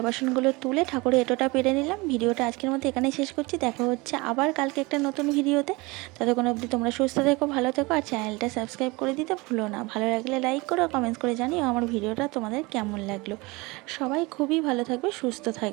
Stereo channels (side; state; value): left; quieter; 24.5 dB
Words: বাসনগুলো তুলে ঠাকুরের এঁটোটা পেরে নিলাম। ভিডিওটা আজকের মতো এখানেই শেষ করছি, দেখা হচ্ছে আবার কালকে একটা নতুন ভিডিওতে। ততক্ষণ অবধি তোমরা সুস্থ থেকো, ভালো থেকো, আর চ্যানেলটা সাবস্ক্রাইব করে দিতে ভুলো না। ভালো লাগলে লাইক করো, কমেন্টস করে জানিও আমার ভিডিওটা তোমাদের কেমন লাগলো। সবাই খুবই ভালো থাকবে, সুস্থ